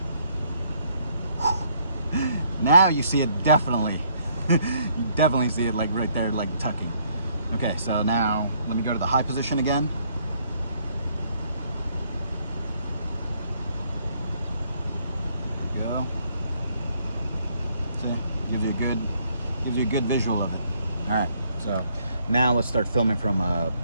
Now you see it definitely. You definitely see it like right there, like tucking. Okay, so now let me go to the high position again. Gives you a good visual of it. All right, so now let's start filming from a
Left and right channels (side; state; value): both; inverted; correlation -0.68